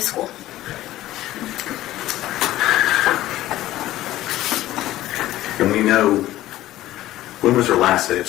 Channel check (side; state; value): right; quieter; 15.1 dB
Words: school. And we know, when was her last day of